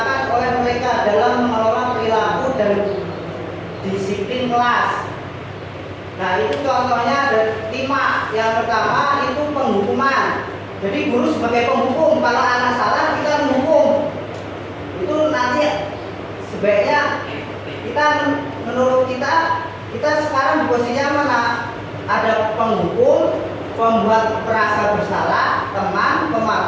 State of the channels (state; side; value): identical; both; correlation 1.00